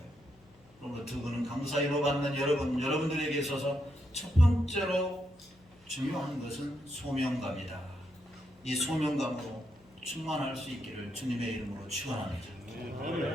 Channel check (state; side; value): noise; left; hum, 29 dB below the sound